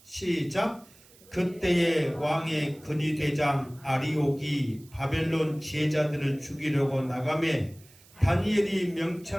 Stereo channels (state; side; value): noise; right; hiss, 26 dB below the sound